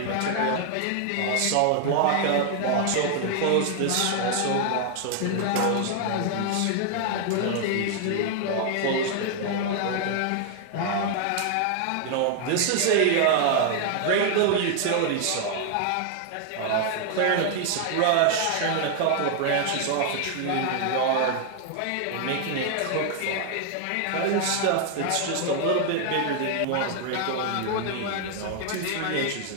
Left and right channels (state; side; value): different; both; correlation 0.00